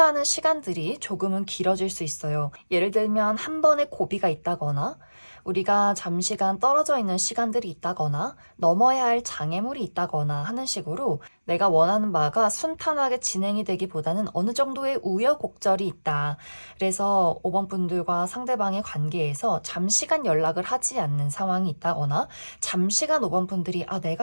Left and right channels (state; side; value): inverted; both; correlation -1.00